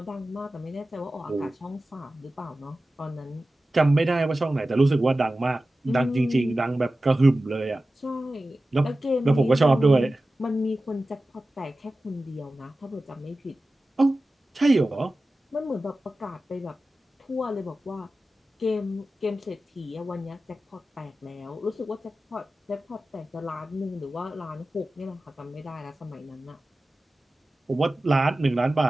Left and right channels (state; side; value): normal; both; correlation 0.95